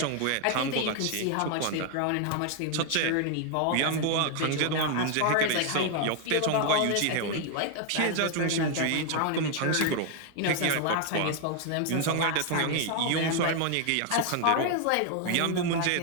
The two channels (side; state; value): both; different; correlation 0.00